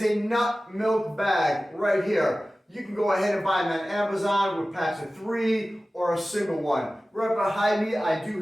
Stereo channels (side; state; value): both; normal; correlation 0.96